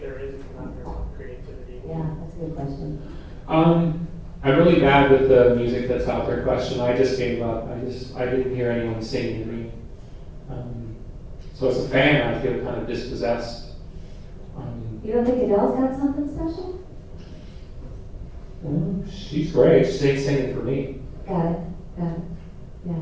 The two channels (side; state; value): both; identical; correlation 1.00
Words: there is a conundrum of creativity? Yeah, that's a good question. I'm really bad with the music that's out there question. I just gave up. I didn't hear anyone singing to me. So as a fan, I feel kind of dispossessed. You don't think Adele's got something special? She's great. She ain't singing for me. Got it. Yeah.